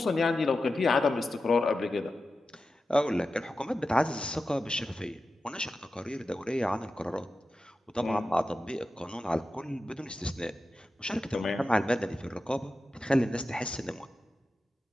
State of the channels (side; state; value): both; normal; correlation 0.92